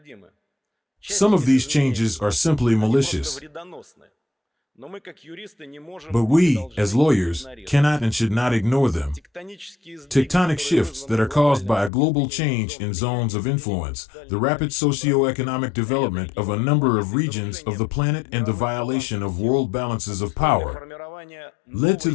Some of these changes are simply malicious. But we, as lawyers, cannot and should not ignore them. Tectonic shifts that are caused by a global change in zones of influence, the rapid socio-economic development of a number of regions of the planet, and the violation of world balances of power led to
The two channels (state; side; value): drops out; right; at 11.9 s